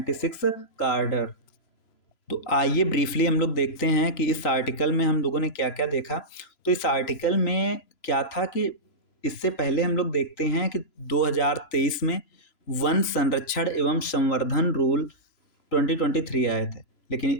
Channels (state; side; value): late; right; 3.0 ms